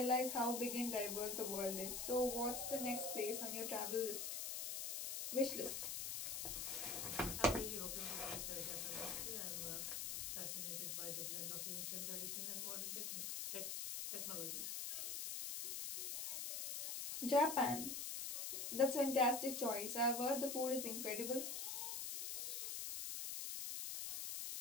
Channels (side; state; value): left; noise; hiss, 2 dB below the sound